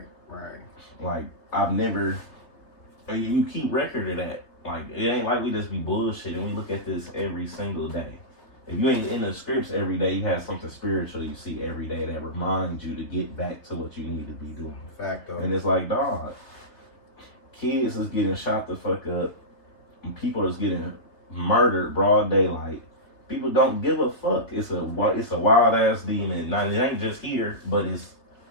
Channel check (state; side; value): late; right; 3.5 ms